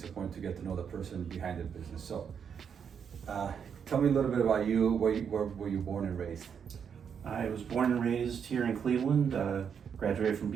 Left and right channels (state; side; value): quieter; left; 7.3 dB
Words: important to get to know the person behind the business. So tell me a little bit about you. Where were you born and raised? I was born and raised here in Cleveland, graduated from